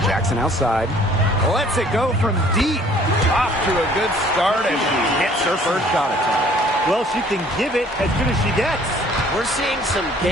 Jackson outside. Lets it go from deep. Off to a good start as she hits her first shot attempt. Well, she can give it as good as she gets. We're seeing some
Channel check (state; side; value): normal; both; correlation 0.56